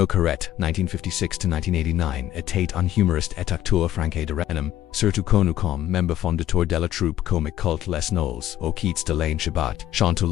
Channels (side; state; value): right; quieter; 13.0 dB